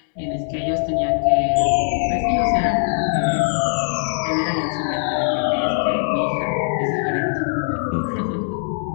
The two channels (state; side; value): silent; right; 65 dB below the other